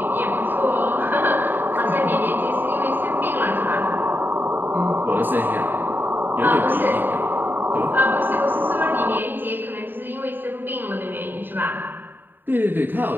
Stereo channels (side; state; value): left; late; 0.093 ms